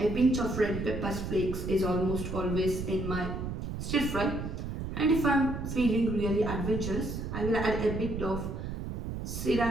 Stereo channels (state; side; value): noise; right; rumble, 5 dB below the sound